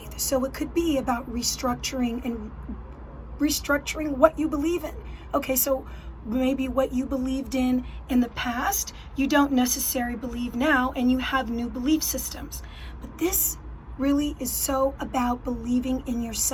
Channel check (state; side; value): identical; both; correlation 1.00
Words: So it could be about restructuring what you believe in. Okay, so maybe what you believed in the past, you don't necessarily believe now, and you have new belief systems. But this really is so about believing in